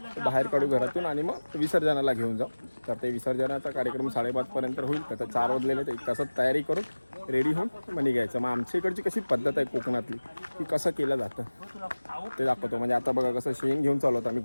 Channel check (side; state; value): both; inverted; correlation -1.00